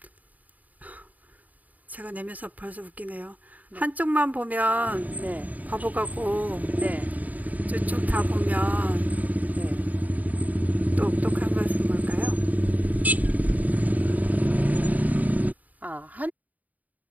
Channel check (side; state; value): left; late; 0.076 ms